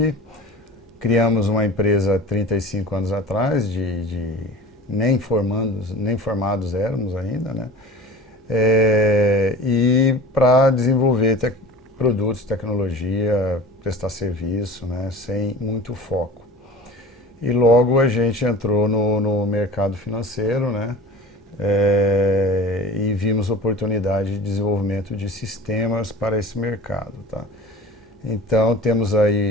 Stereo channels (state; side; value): normal; both; correlation 0.38